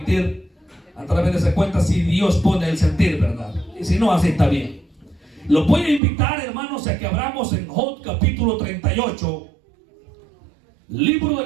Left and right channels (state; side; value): drops out; left; at 6.0 s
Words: a través de esa cuenta si Dios pone el sentir, ¿verdad? Y si no, así está bien. Los voy a invitar, hermanos, a que abramos en Job capítulo 38, libro